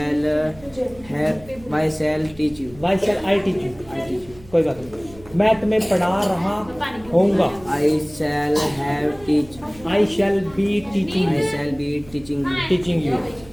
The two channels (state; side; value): noise; right; hum, 22 dB below the sound